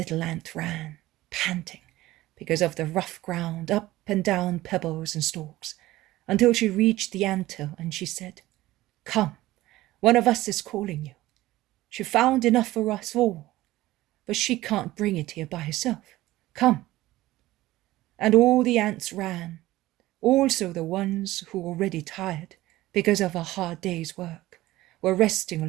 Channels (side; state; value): left; quieter; 16.9 dB